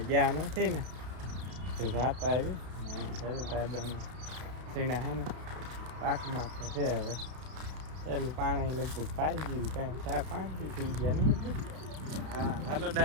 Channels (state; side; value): late; left; 32 ms